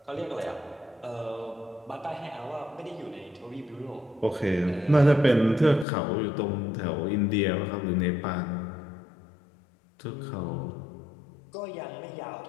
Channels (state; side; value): drops out; right; at 5.9 s